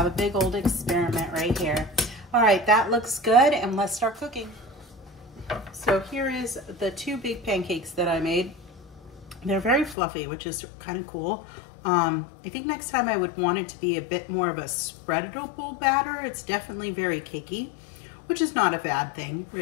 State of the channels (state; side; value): drops out; right; at 10.0 s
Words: a big old experiment right here. All right, that looks good and let's start cooking. So here is the 2 big pancakes that I made. They're very fluffy, which is kind of cool. I think next time I would want it to be a bit more of a spreadable batter. It's definitely very cakey, which is not a bad thing,